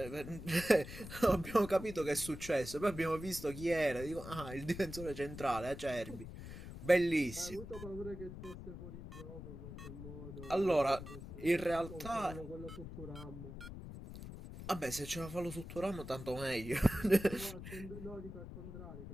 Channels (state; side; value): noise; left; rumble, 11 dB below the sound